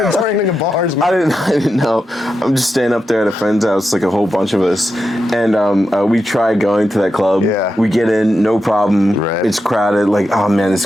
returning to bars, man. I didn't know. I'm just staying up there at a friend's house, like a whole bunch of us, and we tried going to that club. Yeah. We get in, no problem. Right. It's crowded. Like, oh man, it's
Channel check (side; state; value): both; normal; correlation 0.88